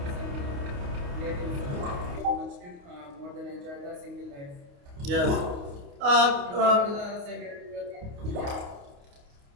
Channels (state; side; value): late; left; 29 ms